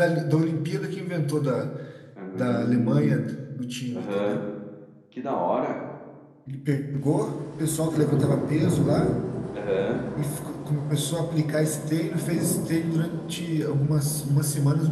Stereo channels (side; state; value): both; identical; correlation 1.00